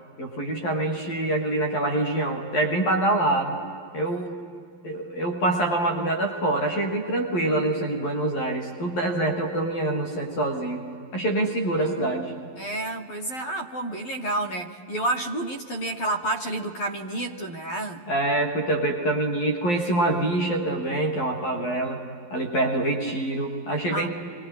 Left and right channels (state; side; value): late; right; 11 ms